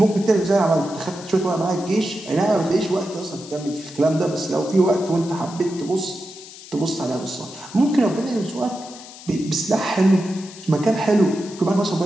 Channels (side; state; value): left; noise; hiss, 17 dB below the sound